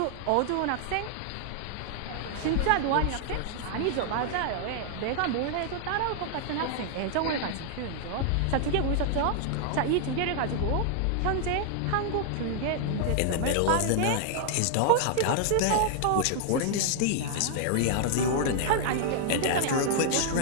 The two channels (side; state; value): both; different; correlation 0.00